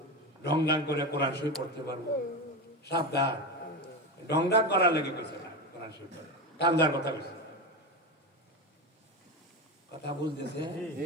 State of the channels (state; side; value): normal; both; correlation 0.19